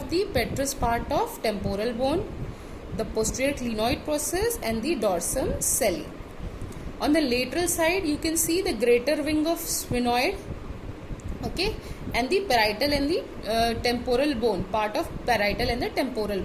the petrous part of temporal bone, the posterior clinoid process, and the dorsum celli. On the lateral side you can see the greater wing of sphenoid, okay, and the parietal and the temporal bone, part of parietal and the temporal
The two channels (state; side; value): identical; both; correlation 1.00